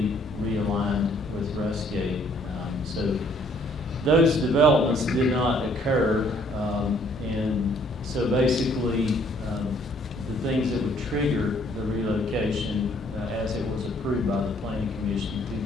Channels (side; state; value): both; normal; correlation 0.63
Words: realigned with Rustgate. So those developments did not occur, and so basically the things that would trigger the relocation as it was approved by the Planning Commission in